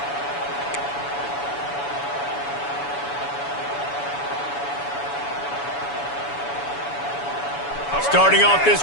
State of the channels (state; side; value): late; right; 7.0 ms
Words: Starting off this